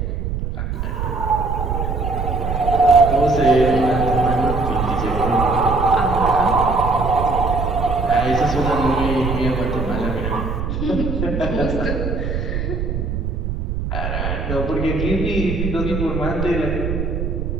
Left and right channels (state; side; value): noise; right; rumble, 3 dB below the sound